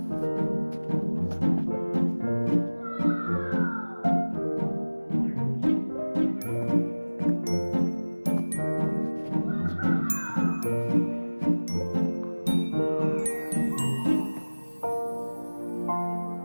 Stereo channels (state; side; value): inverted; both; correlation -1.00